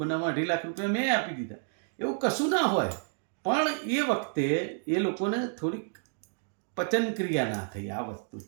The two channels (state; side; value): silent; left; digital silence